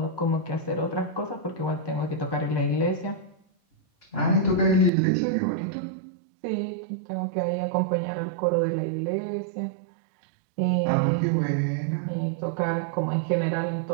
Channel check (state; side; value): drops out; left; at 4.9 s